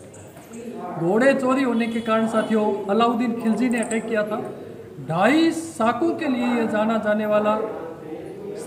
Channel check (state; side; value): identical; both; correlation 1.00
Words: घोड़े चोरी होने के कारण साथियों अलाउद्दीन खिलजी ने अटैक किया था। 2.5 साकों के लिए ये जाना जाने वाला